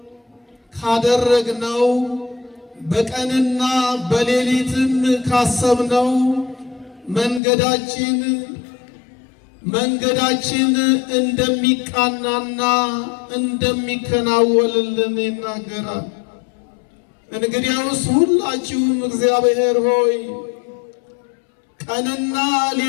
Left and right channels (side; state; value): right; drops out; at 7.4 s